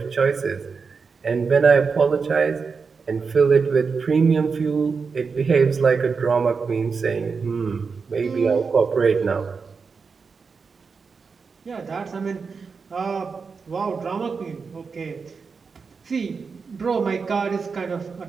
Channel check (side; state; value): left; quieter; 5.2 dB